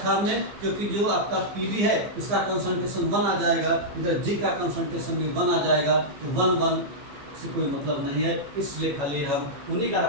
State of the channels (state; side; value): late; left; 15 ms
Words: हमने, क्योंकि जो आपका Pb है इसका कंसंट्रेशन 1 आ जाएगा, इधर G का कंसंट्रेशन भी 1 आ जाएगा, तो 1 से कोई मतलब नहीं है। इसलिए खाली हम उन्हीं का